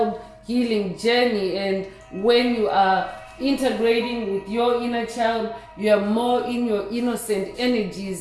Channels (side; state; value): both; identical; correlation 1.00